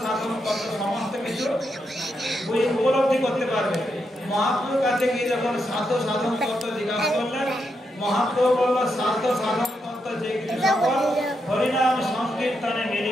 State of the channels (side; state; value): both; normal; correlation 0.83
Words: সাধন তত্ত্ব সমস্ত কিছু উপলব্ধি করতে পারবে। মহাপ্রভুর কাছে গিয়ে যখন সাধ্য সাধন তত্ত্ব জিজ্ঞাসা করলেন, মহাপ্রভু বলল সাধ্য সাধন তত্ত্ব যে কিছু সকল হরিনাম সংকীর্তনে